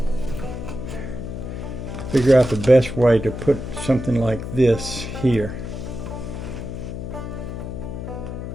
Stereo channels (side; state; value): left; noise; hum, 7 dB below the sound